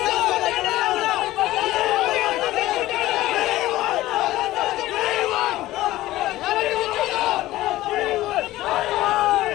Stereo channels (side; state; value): right; quieter; 16.2 dB